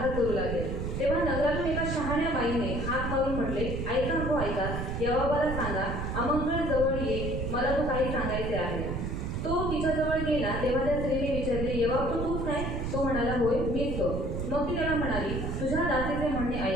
करू लागले। तेव्हा नगरातून एका शहाण्या बाईने हाक मारून म्हटले, ऐका हो ऐका, योआबाला सांगा, आमंत्रण जवळ ये, मला तो काही सांगायचे आहे। तो तिच्याजवळ गेला तेव्हा त्या स्त्रीने विचारले, योआब तूच काय? तो म्हणाला, होय मीच तो। मग ती त्याला म्हणाली, तुझ्या दासीचे म्हणणे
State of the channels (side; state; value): right; noise; rumble, 3 dB below the sound